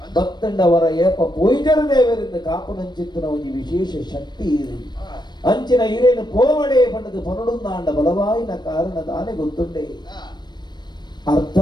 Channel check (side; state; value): right; late; 0.21 ms